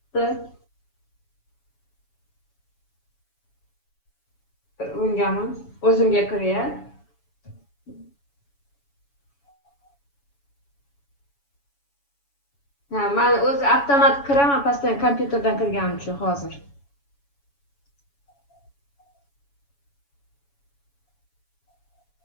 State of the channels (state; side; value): late; right; 7.1 ms